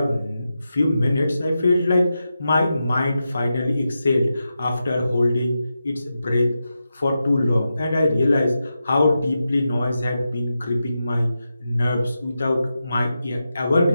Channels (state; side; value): inverted; both; correlation -0.89